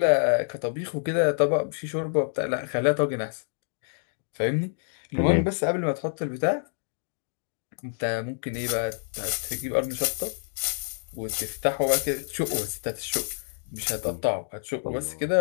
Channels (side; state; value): right; silent; digital silence